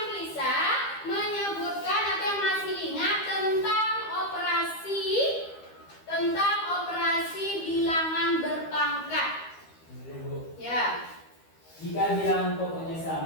bisa menyebutkan atau yang masih ingat tentang operasi bilangan berpangkat? Ya. Jika bilangan pokoknya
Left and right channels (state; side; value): late; right; 13 ms